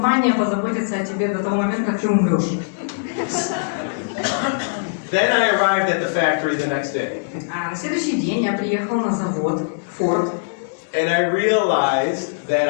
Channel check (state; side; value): quieter; right; 38.0 dB